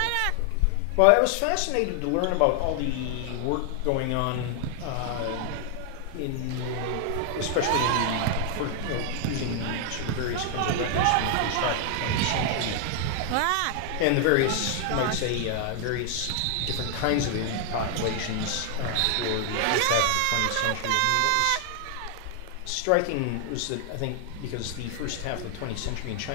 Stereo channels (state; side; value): different; both; correlation 0.00